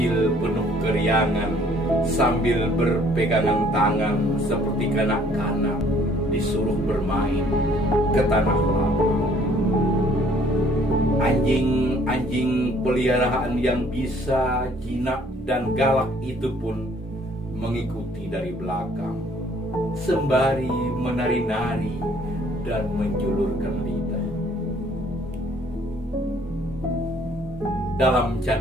penuh keriangan sambil berpegangan tangan seperti kanak-kanak disuruh bermain ke tanah lapang. Anjing-anjing peliharaan yang bisa, jinak dan galak itu pun mengikuti dari belakang, sembari menari-nari dan menjulurkan lidah. Dalam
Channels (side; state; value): both; normal; correlation 0.60